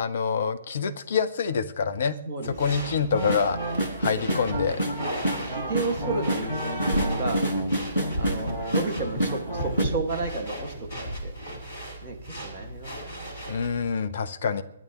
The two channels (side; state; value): both; inverted; correlation -0.64